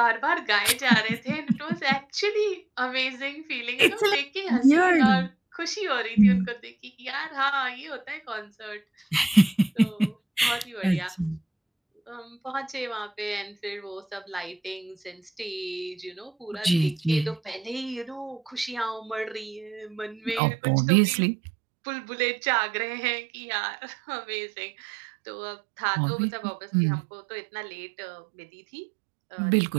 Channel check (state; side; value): drops out; left; at 20.4 s